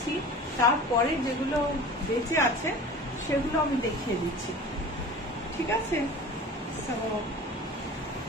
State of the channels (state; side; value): normal; both; correlation 0.38